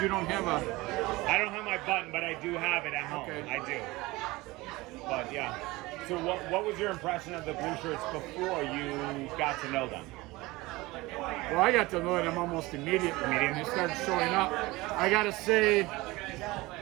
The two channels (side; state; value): left; quieter; 21.0 dB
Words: you don't have a... I don't have my button, but I do have it at home. Okay. I do. But yeah. So what was your impression of the blue shirts before you got to know them? Well, I got to know them almost immediately. When they started showing up. I got to say,